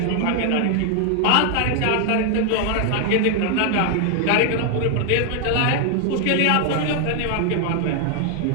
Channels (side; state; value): both; different; correlation 0.00